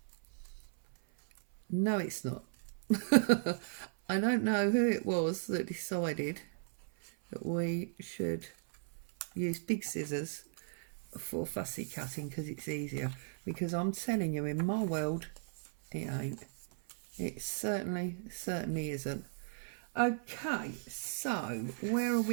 no it's not. I don't know who it was that decided that we should use big scissors for fussy cutting because it's easier, because I'm telling you, in my world it ain't. It certainly isn't. Okay, so where are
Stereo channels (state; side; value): silent; left; 54 dB below the other